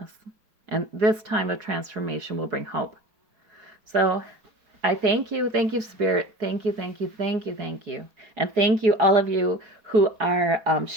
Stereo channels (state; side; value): late; left; 4.7 ms